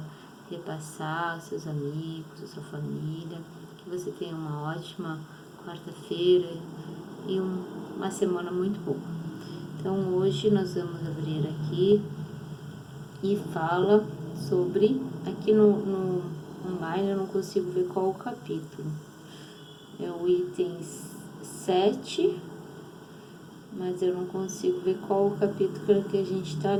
repassar, aos seus amigos, a sua família. Que você tenha uma ótima quarta-feira e uma semana muito boa. Então hoje nós vamos abrir aqui e fala sobre, aqui no online eu não consigo ver qual o capítulo, é o item 7, mas eu não consigo ver qual o capítulo que a gente está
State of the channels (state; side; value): identical; both; correlation 1.00